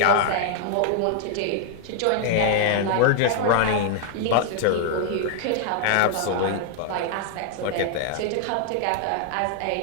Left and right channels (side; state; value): both; different; correlation 0.00